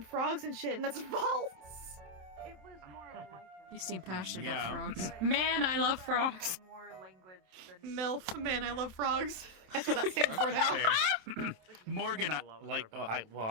frogs and shit, and that's false. It was more like You seem passionate Yeah. about frogs. Man, I love frogs. more language than MILF, man, I love frogs. That's what that stands for now. Fair. Morgan, like, I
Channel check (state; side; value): late; left; 27 ms